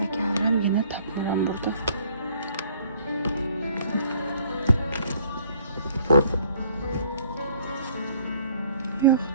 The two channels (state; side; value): inverted; both; correlation -0.60